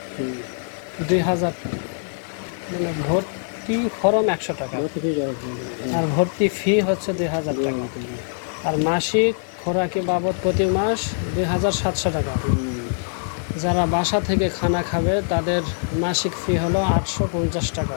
2000, মানে ভর্তি ফরম 100 টাকা আর ভর্তি ফি হচ্ছে 2000 টাকা। আর মাসিক খোরাকি বাবদ প্রতি মাস 2700 টাকা। যারা বাসা থেকে খানা খাবে তাদের মাসিক ফি হলো 850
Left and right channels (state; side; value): silent; right; digital silence